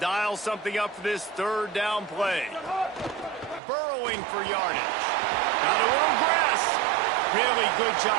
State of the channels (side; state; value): left; drops out; at 3.6 s